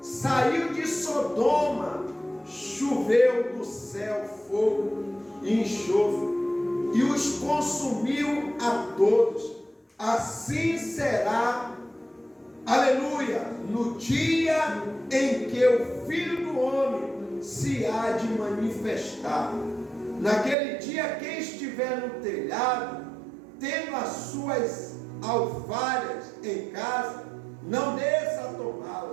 saiu de Sodoma, choveu do céu fogo e enxofre, e os consumiu a todos. Assim será, aleluia, no dia em que o Filho do Homem se há de manifestar. Naquele dia, quem estiver no telhado, tendo as suas alfaias em casa, não desça a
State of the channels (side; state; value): left; drops out; at 20.6 s